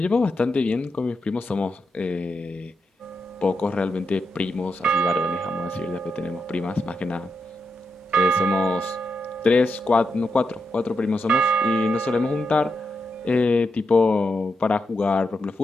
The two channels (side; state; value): both; normal; correlation 0.85